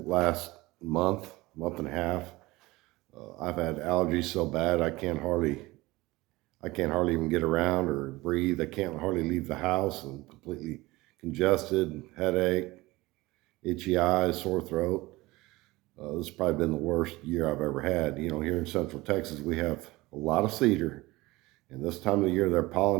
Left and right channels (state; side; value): quieter; left; 20.5 dB